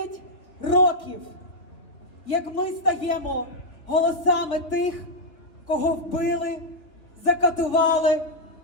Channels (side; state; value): right; late; 3.4 ms